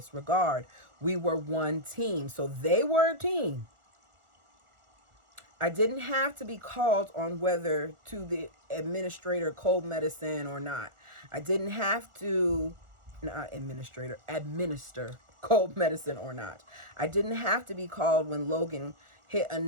regard. We were one team, so they were a team. I didn't have to be called on whether to the administrator cold medicine or not. I didn't have to administer cold medicine or not. I didn't have to be called when Logan hit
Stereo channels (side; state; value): left; late; 1.4 ms